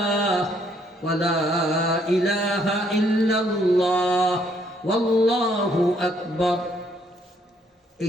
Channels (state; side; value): normal; both; correlation 0.68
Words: ওয়ালা ইলাহা ইল্লাল্লাহ ওয়াল্লাহু আকবার। এই